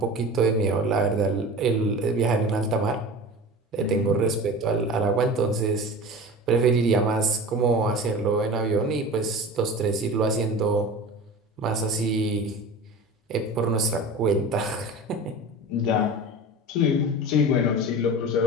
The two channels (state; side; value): normal; both; correlation 0.34